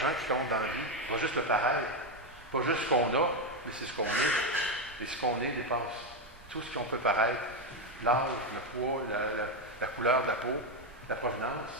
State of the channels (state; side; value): normal; both; correlation 0.07